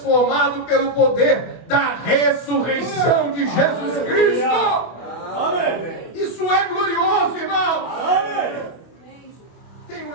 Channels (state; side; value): late; right; 24 ms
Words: pelo poder da ressurreição de Jesus Cristo. Isso é glorioso, irmão. Tenho